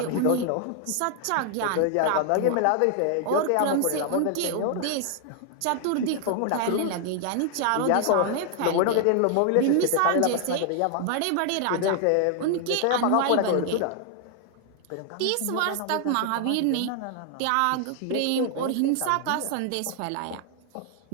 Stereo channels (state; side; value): different; both; correlation 0.00